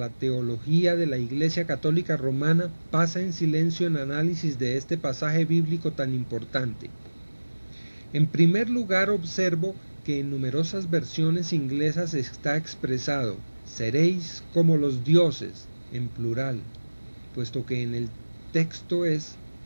teología de la Iglesia Católica Romana, pasa en silencio en análisis de este pasaje bíblico tan importante. En primer lugar, observo que en numerosas versiones inglesas está expresado: seréis como los dioses, en plural, puesto que en el texto es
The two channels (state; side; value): inverted; both; correlation -1.00